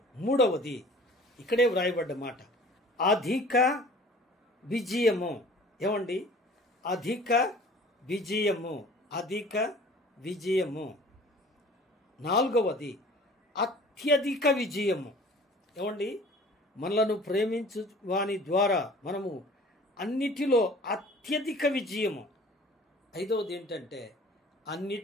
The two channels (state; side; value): normal; both; correlation 0.47